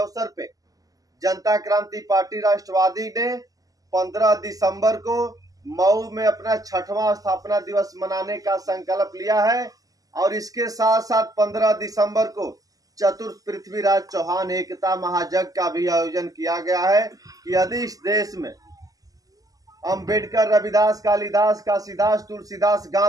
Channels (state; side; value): late; left; 0.17 ms